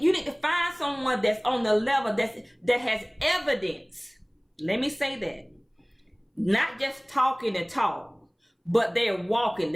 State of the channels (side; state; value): both; identical; correlation 1.00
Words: need to find someone that's on the level that has evidence. Let me say that. Not just talking and talk, but they're walking,